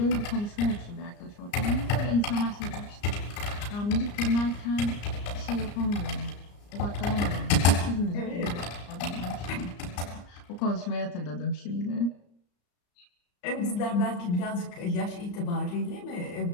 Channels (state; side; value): late; right; 34 ms